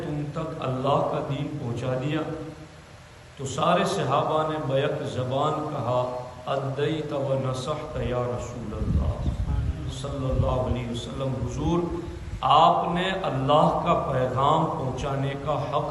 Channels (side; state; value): both; identical; correlation 1.00